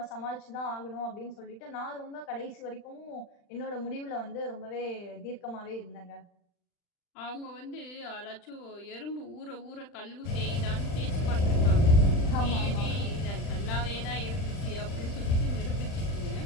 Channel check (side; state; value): right; late; 40 ms